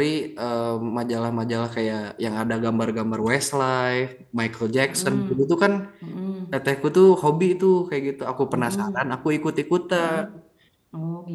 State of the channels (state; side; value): identical; both; correlation 1.00